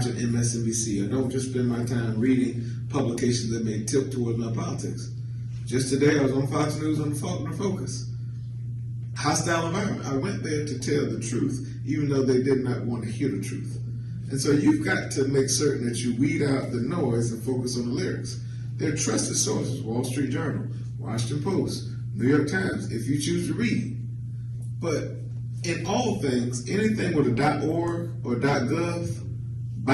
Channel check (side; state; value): both; identical; correlation 1.00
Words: MSNBC. I don't just spend my time reading publications that may tilt toward my politics. Just today I was on Fox News on the Faulkner Focus. Hostile environment. I went there to tell the truth, even though they did not want to hear the truth. And so you've got to make certain that you weed out the noise and focus on the lyrics. They're trusted sources: Wall Street Journal, Washington Post, New York Times, if you choose to read. But in all things, anything with a .org or .gov,